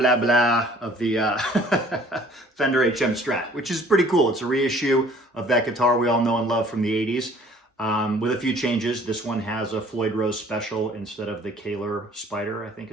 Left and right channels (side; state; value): both; normal; correlation 0.54